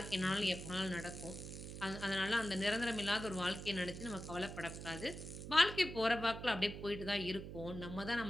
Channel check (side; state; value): right; noise; hum, 9 dB below the sound